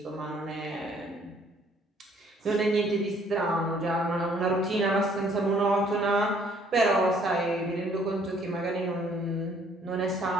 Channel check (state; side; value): normal; both; correlation 0.62